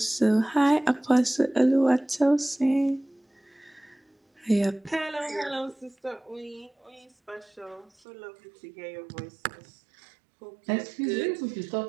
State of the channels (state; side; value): drops out; left; at 7.9 s